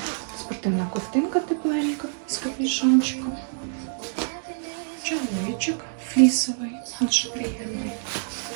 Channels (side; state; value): left; silent; digital silence